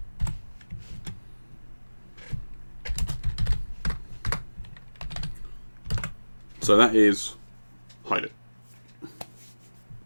so that is hide it.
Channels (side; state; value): both; inverted; correlation -1.00